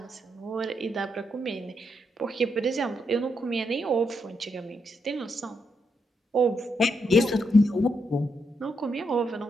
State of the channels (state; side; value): normal; both; correlation 0.80